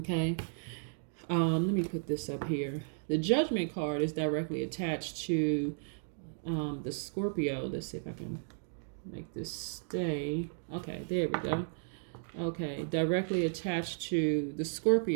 Let me put this up here. The Judgment card is directly attached to the Scorpio. Let's see if I can make this stay. Okay, there we go. Okay, directly attached to the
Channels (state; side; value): silent; left; digital silence